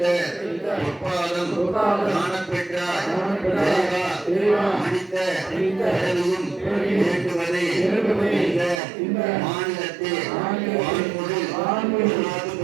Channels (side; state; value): left; drops out; at 8.8 s